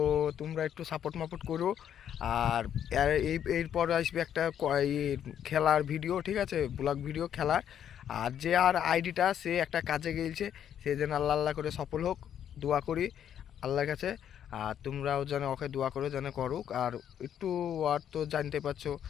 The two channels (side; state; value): right; quieter; 9.6 dB